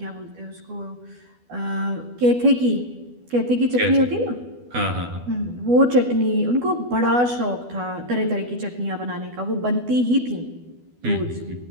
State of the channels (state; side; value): late; left; 12 ms